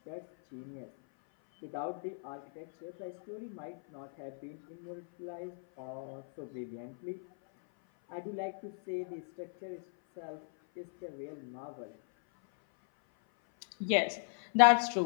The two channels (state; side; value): silent; right; 53 dB below the other